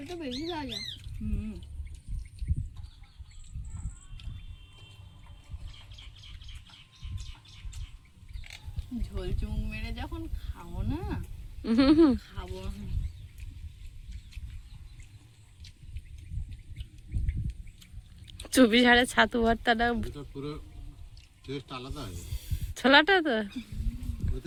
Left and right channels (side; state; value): both; identical; correlation 1.00